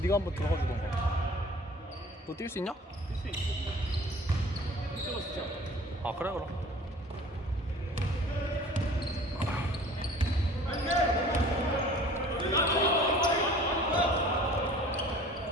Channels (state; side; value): normal; both; correlation 0.47